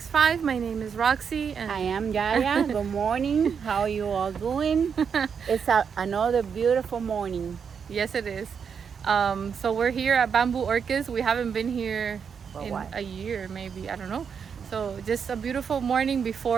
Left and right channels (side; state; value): left; quieter; 6.7 dB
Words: My name is Roxy and I am Yaya. Good morning. How are you all doing? It's another beautiful morning. yes it is. So we're here at Bamboo Orchids. We haven't been here For in what? a year maybe, I don't know. So just a beautiful morning